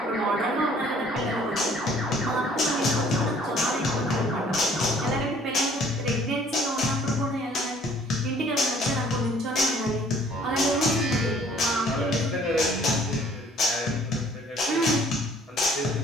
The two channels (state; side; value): normal; both; correlation 0.57